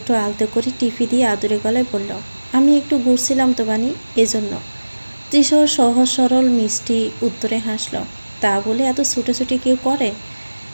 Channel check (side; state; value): both; inverted; correlation -1.00